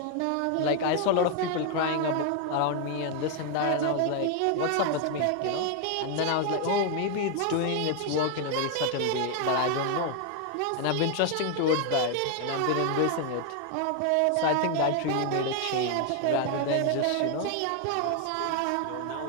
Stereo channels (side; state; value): both; different; correlation 0.01